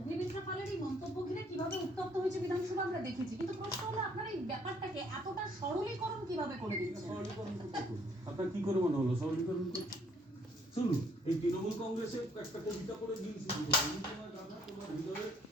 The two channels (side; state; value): both; normal; correlation 0.64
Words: পালের এই মন্তব্য ঘিরে কিভাবে উত্তপ্ত হয়েছে বিধানসভা আমরা দেখেছি, কিন্তু প্রশ্ন হলো আপনার এই ব্যাপারটাকে এতটা সরলীকরণ কিভাবে করে দিচ্ছেন? আপনার কি করে মনে হলো সরলীকরণ করতে? শুনুন, এই তৃণমূল কংগ্রেসে একটা কবিতা করে দিন শুরু করো, আমি তোমার গাধা তোমার হৃদয়ে